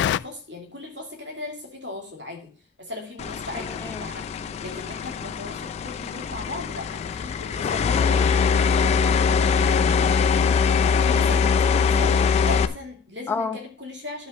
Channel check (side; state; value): right; quieter; 5.6 dB